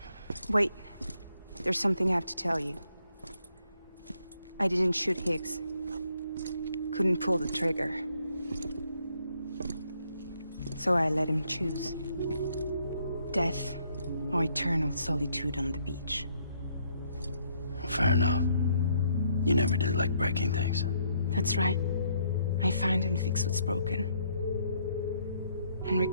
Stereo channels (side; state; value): both; inverted; correlation -0.70